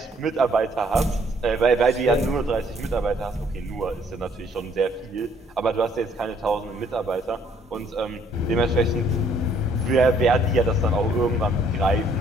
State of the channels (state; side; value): normal; both; correlation 0.64